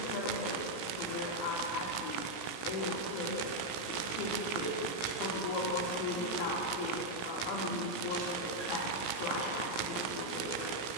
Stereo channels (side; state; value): right; late; 17 ms